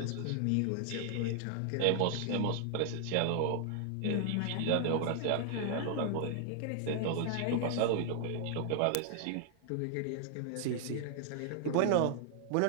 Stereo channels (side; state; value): both; different; correlation 0.00